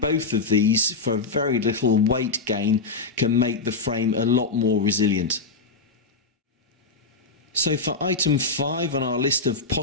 of these for very little weight gain can make the frame a lot more resilient. So for item 5 on our list of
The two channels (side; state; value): right; quieter; 4.0 dB